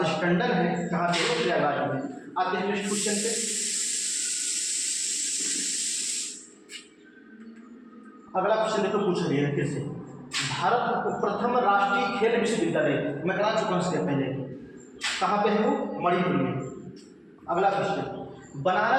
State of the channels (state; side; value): identical; both; correlation 1.00